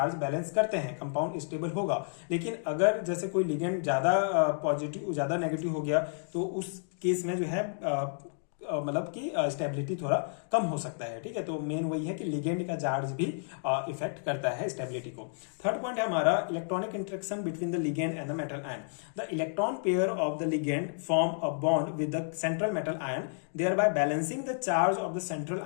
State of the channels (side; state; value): right; silent; digital silence